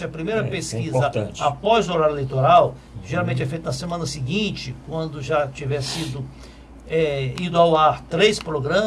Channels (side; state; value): both; identical; correlation 1.00